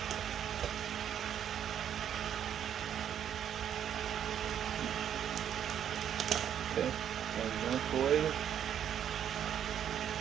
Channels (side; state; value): left; quieter; 9.4 dB